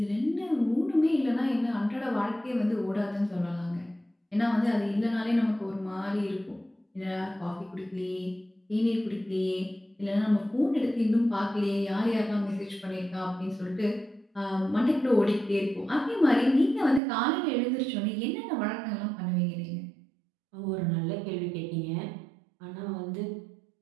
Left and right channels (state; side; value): drops out; left; at 17.0 s